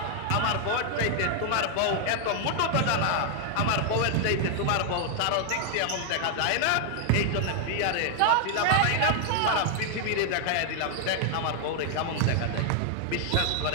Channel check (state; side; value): different; both; correlation 0.00